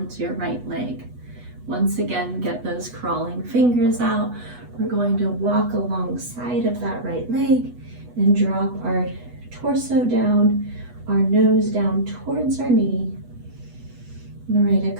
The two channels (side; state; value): left; late; 8.1 ms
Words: your right leg. Once again, get those crawling fingers out. We're going to walk alongside of that right leg and drop our torso down, our nose down towards our knee. I'm going to write